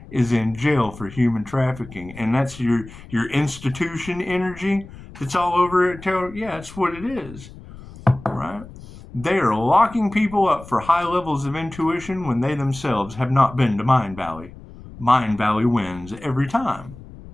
is in jail for human trafficking, and that's your institution energy that's all over it. Tarot, yeah, that's what it is, right? They are locking people up for high levels of intuition when they themselves have not been to Mind Valley. Mind Valley wins every time.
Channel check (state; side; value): noise; left; rumble, 17 dB below the sound